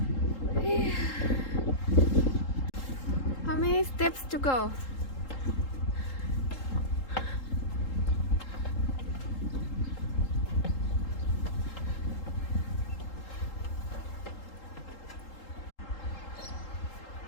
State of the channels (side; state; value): right; late; 3.8 ms